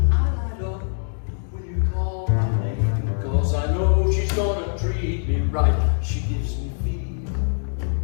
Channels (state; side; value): silent; right; digital silence